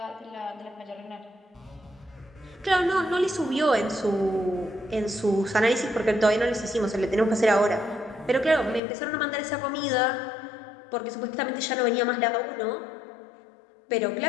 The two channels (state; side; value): drops out; right; at 8.8 s